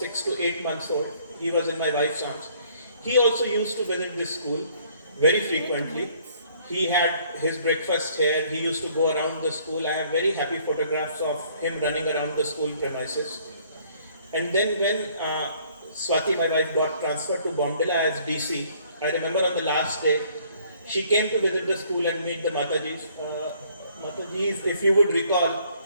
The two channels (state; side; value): inverted; both; correlation -0.61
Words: to 8 months old. He was in my wife's arms. He also used to visit this school very frequently. He had his breakfast here. He used to go around the school. I have very happy photographs of him running around the school premises. And then when Swati, my wife, got transferred to Bomdila as DC, I remember on the last day, she came to visit the school and meet the Matajis. Matajis, if you would recall,